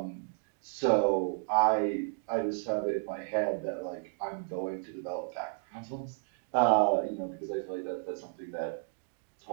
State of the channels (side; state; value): left; silent; digital silence